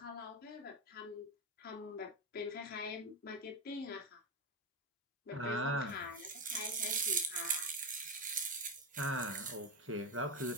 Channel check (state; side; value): normal; both; correlation 0.12